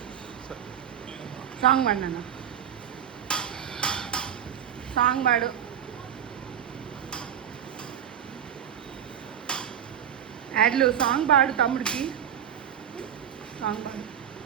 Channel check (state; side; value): quieter; left; 9.3 dB